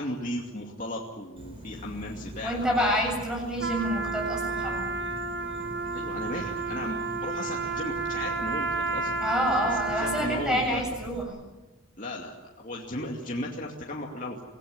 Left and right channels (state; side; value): normal; both; correlation 0.38